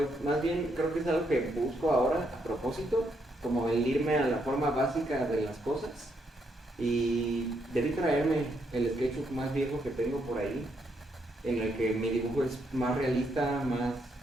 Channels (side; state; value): both; normal; correlation 0.76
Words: más bien creo que es algo que busco ahora a propósito, como el irme a la forma básica de las cosas y debí traerme el sketchbook más viejo que tengo por ahí, en el que mi dibujo es más realista, más